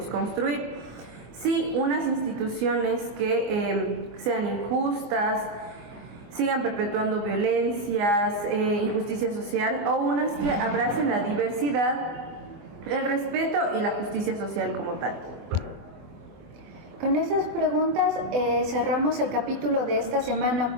construir? Sí, unas instituciones que sean injustas, sigan perpetuando violencias, injusticia social, o unas que abracen la diversidad, el respeto y la justicia social como tal. Con esas preguntas cerramos el capítulo de esta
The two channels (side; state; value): left; late; 24 ms